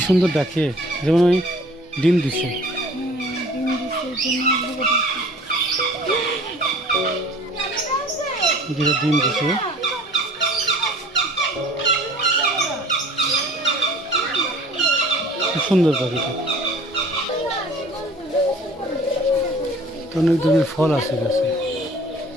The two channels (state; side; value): normal; both; correlation 0.49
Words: সুন্দর ডাকে, যেমন ওই ডিম দিছে। যেটা ডিম দিছে। খুব সুন্দর পাখিটা। অনেক ধরনের ফল আছে গাছে,